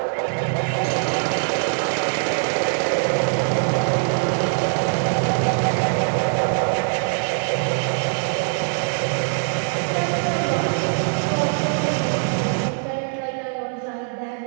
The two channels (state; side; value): silent; left; 59 dB below the other